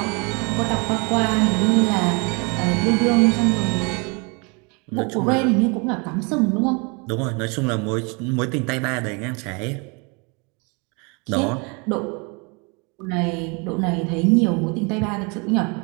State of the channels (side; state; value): left; quieter; 31.3 dB